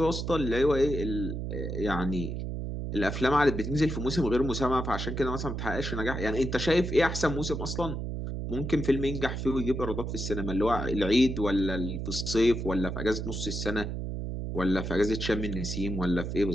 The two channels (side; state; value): right; noise; hum, 4 dB below the sound